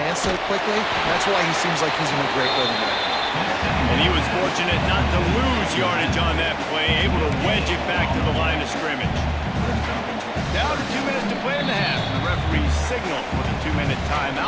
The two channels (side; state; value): both; identical; correlation 1.00